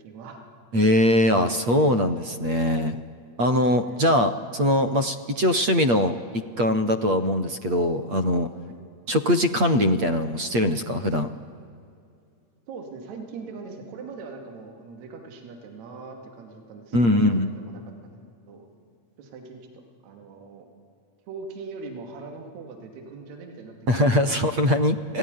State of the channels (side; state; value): left; late; 8.5 ms